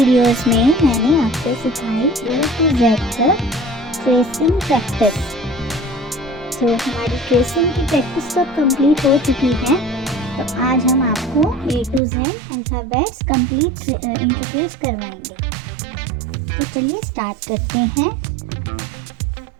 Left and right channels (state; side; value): drops out; left; at 12.0 s